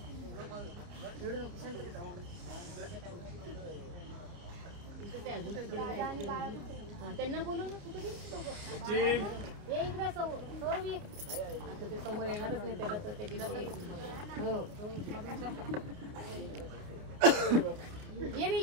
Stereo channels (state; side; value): late; left; 29 ms